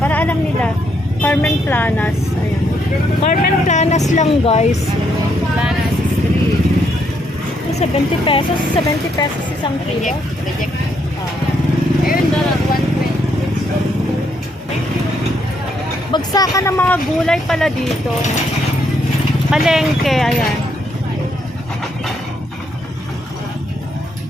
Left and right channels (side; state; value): both; normal; correlation 0.74